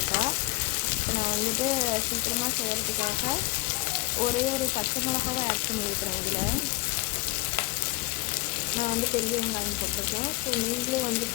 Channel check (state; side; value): quieter; right; 21.9 dB